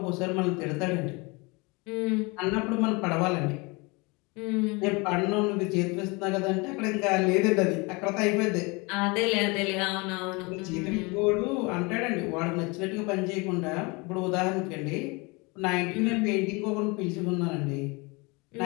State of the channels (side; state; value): right; quieter; 27.2 dB